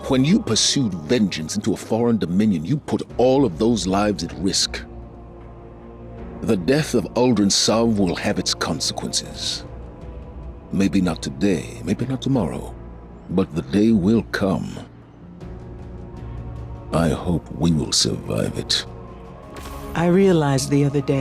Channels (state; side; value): identical; both; correlation 1.00